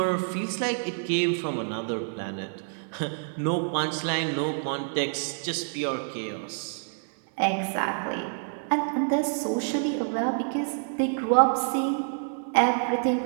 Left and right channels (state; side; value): silent; left; 60 dB below the other